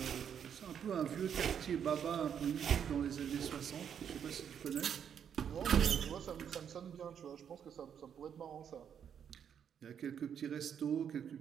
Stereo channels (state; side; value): quieter; left; 8.2 dB